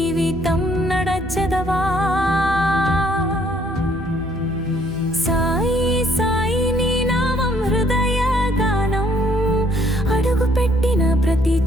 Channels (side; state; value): both; normal; correlation 0.64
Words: నడచెదవా. సాయి సాయి నీ నామం హృదయ గానం, అడుగు పెట్టిన ప్రతి